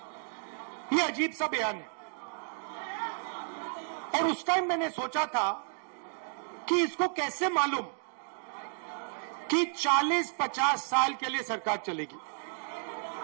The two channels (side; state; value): left; silent; digital silence